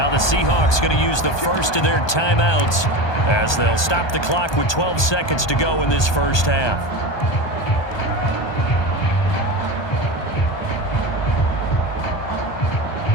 the Seahawks going to use the first of their timeouts as they'll stop the clock with 12 seconds to go in this first half.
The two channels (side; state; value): right; late; 1.2 ms